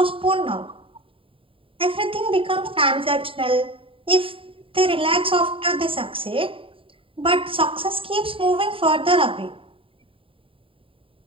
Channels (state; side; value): late; left; 0.26 ms